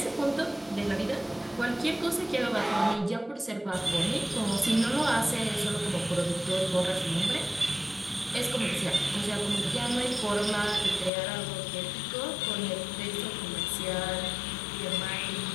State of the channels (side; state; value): right; drops out; at 11.1 s